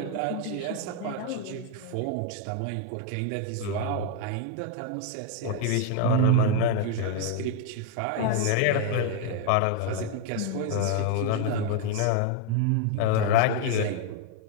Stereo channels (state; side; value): different; both; correlation 0.00